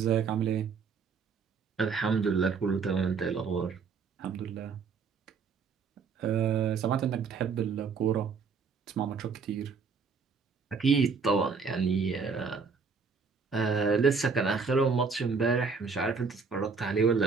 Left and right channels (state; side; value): quieter; left; 5.3 dB